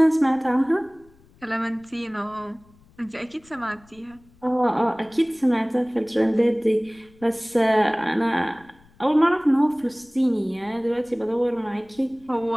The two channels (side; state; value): left; noise; rumble, 28 dB below the sound